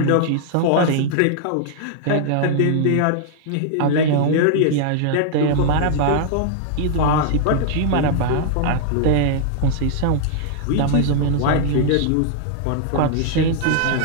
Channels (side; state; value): both; different; correlation -0.01